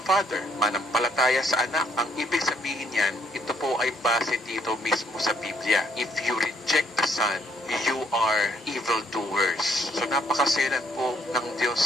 Father? Manampalataya sa anak. Ang ibig sabihin yan, ito po ay base dito mismo sa Biblia. If you reject the Son, you are evildoers. So napakaselan po ng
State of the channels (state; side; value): normal; both; correlation 0.68